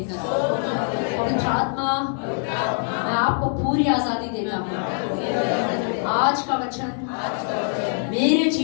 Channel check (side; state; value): right; silent; 59 dB below the other